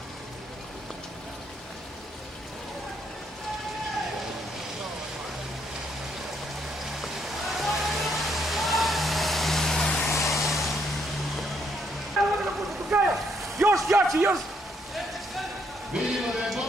Još jači, još! Vidimo da je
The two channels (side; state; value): both; normal; correlation 0.73